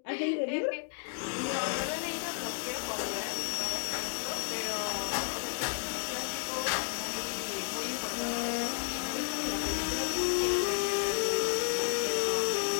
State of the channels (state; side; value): silent; right; digital silence